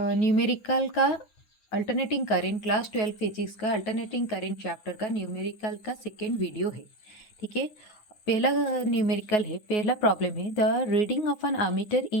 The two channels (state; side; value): late; right; 9.3 ms